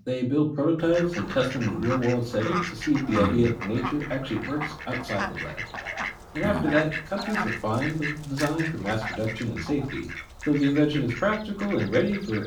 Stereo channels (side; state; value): both; identical; correlation 1.00